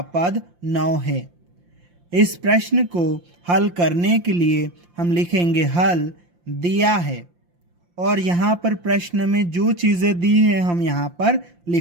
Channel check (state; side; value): late; left; 5.7 ms